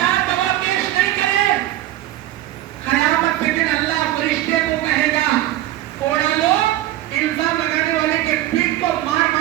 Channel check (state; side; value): quieter; left; 14.5 dB